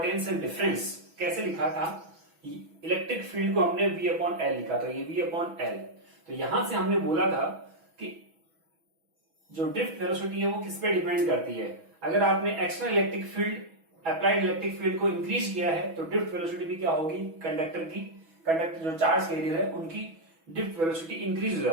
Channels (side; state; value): left; late; 6.1 ms